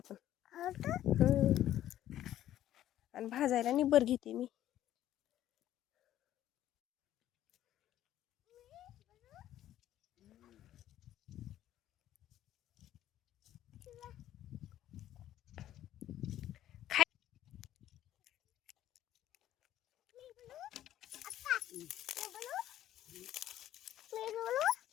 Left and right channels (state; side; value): quieter; right; 12.4 dB